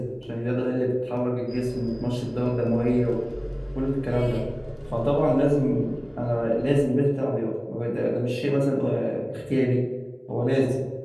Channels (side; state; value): both; identical; correlation 1.00